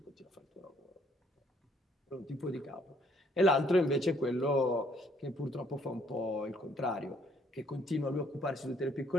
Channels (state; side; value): normal; both; correlation 0.66